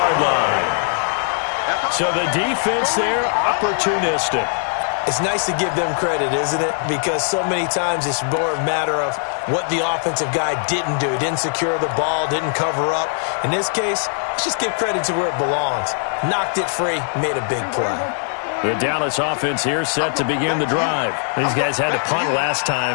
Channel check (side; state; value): right; silent; digital silence